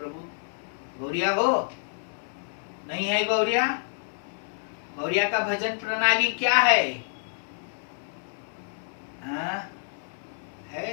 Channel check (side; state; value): right; silent; 59 dB below the other